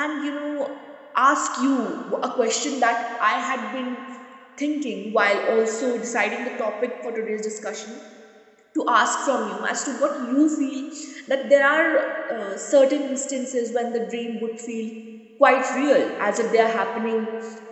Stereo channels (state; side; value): identical; both; correlation 1.00